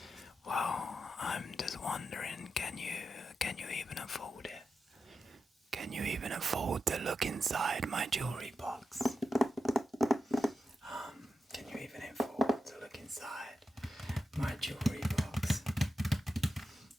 Well, I'm just wondering, can you even afford it? Can you even afford to look inside my jewelry box? Can you even afford to look inside my jewelry box?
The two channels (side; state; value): both; normal; correlation 0.88